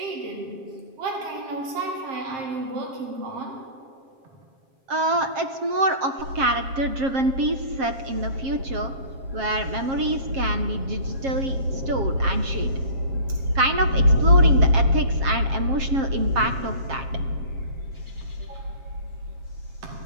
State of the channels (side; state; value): left; late; 7.5 ms